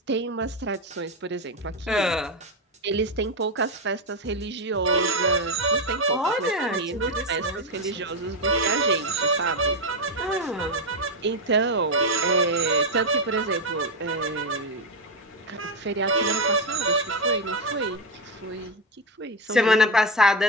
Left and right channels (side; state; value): both; normal; correlation 0.09